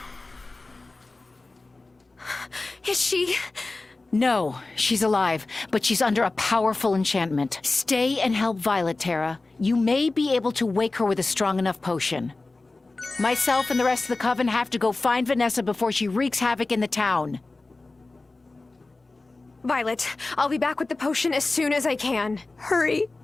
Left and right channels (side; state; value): right; quieter; 3.3 dB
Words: Is she? No, she's alive, but she's under a powerful enchantment. Stay and help Violet, Terra. You may be able to wake her with a strong enough potion. Myself and the rest of the coven have to go find Vanessa before she wreaks havoc in the town. Violet, I'll be back with the potion as soon as I can. Hurry.